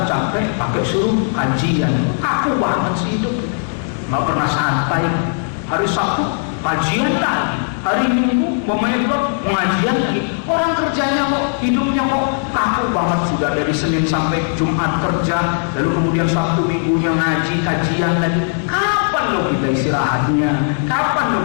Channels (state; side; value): silent; right; digital silence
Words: capek, pakai suruh kajian, kaku banget sih hidup. Nggak pernah santai. Hari Sabtu kajian lagi, hari Minggu pemain klub pengajian lagi. Orang kerjanya kok, hidupnya kok kaku banget, sudah dari Senin sampai Jumat kerja, lalu kemudian Sabtu Minggunya ngaji, kajian lagi. Kapan lo kita istirahatnya? Kapan lo